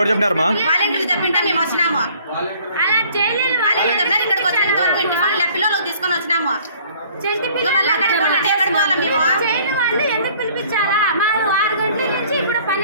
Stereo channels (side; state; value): both; inverted; correlation -0.56